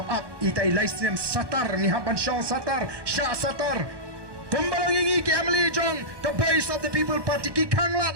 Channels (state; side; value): late; left; 1.2 ms